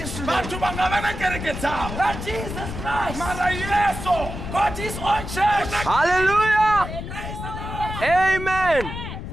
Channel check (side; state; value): left; noise; rumble, 7 dB below the sound